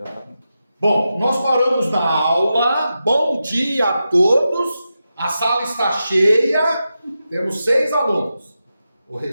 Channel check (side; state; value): both; inverted; correlation -0.90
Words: tá. Bom, nós paramos na aula. Bom dia a todos. A sala está cheia. Temos 6 alunos. O